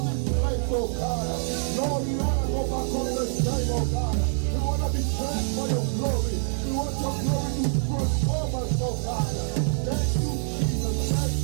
this place, oh God. Lord, we want to go back on the same, oh God. We want to be changed by your glory. We want your glory to transform us, oh God. Thank you, Jesus. Thank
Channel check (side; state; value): left; silent; digital silence